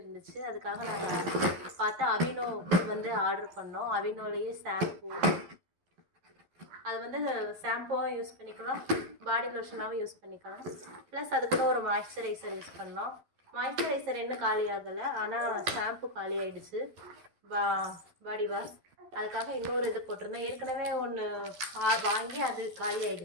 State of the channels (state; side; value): late; left; 12 ms